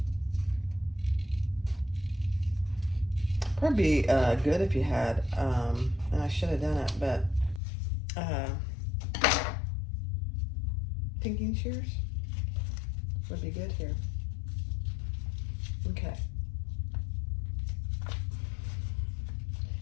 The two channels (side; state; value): right; drops out; at 7.6 s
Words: Probably be good if you had, and I should have done it, but pinking shears would be good here. Okay.